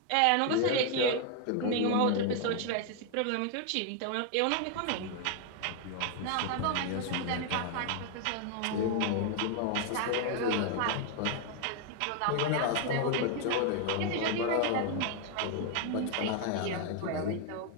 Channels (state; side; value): different; both; correlation 0.01